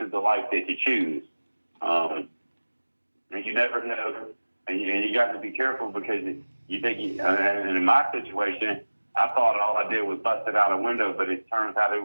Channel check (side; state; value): both; inverted; correlation -1.00